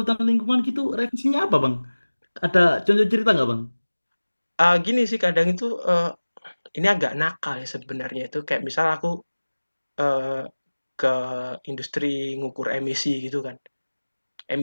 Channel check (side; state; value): both; inverted; correlation -1.00